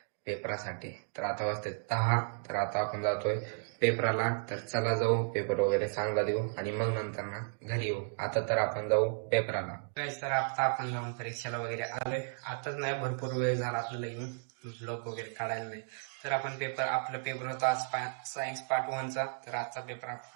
पेपरासाठी. तर आता वाजते 10. तर आता आपण जातोय पेपराला. तर चला जाऊ, पेपर वगैरे चांगला देऊ आणि मग नंतर ना घरी येऊ. आता तर आपण जाऊ पेपराला. तर आता आपण जाऊन परीक्षेला वगैरे आलोय. आताच नाही, भरपूर वेळ झाला आपल्याला येऊन ब्लॉग वगैरे काढायला नाही. तर आपण आपला पेपर होता आज सायन्स पार्ट 1 चा. तर आजचा पेपर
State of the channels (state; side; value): silent; left; digital silence